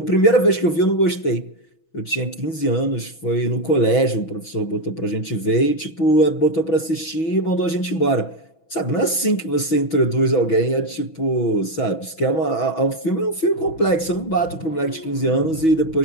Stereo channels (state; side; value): late; right; 6.2 ms